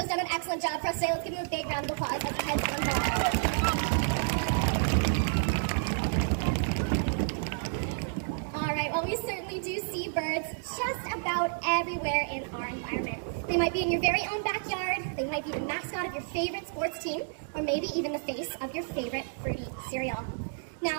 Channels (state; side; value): silent; left; digital silence